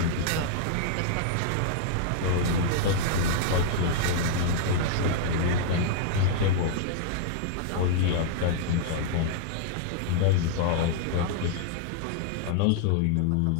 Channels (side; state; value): both; different; correlation -0.01